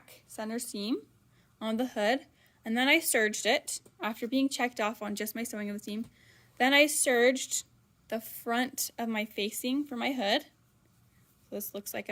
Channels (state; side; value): identical; both; correlation 1.00